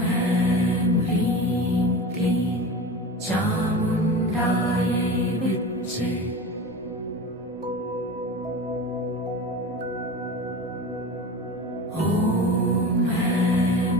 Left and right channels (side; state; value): both; normal; correlation 0.31